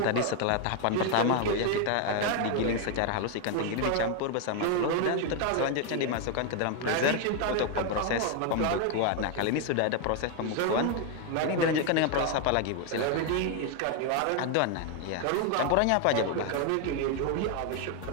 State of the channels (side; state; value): both; different; correlation 0.01